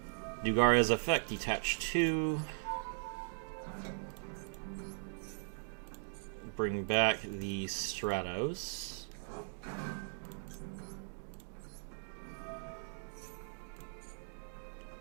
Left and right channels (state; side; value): silent; left; digital silence